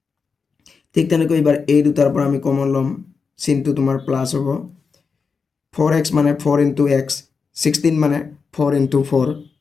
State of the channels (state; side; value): quieter; right; 5.2 dB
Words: ঠিক তেনেকৈ এবাৰ এই দুটাৰ পৰা আমি কমন ল'ম চিনটো তোমাৰ প্লাস হ'ব 4x মানে 4 into x 16 মানে 4 into 4